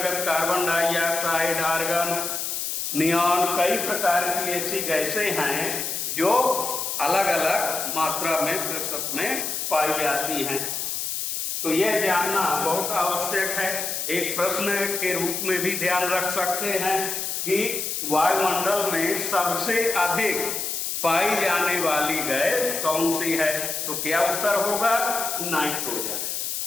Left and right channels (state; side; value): noise; left; hiss, 3 dB below the sound